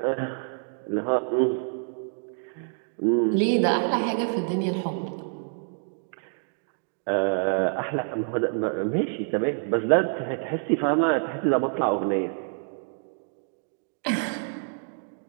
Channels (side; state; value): left; silent; 60 dB below the other